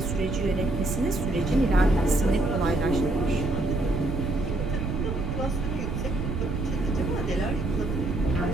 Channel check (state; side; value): noise; right; rumble, 3 dB below the sound